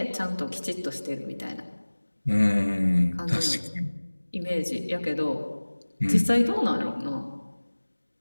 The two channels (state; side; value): inverted; both; correlation -1.00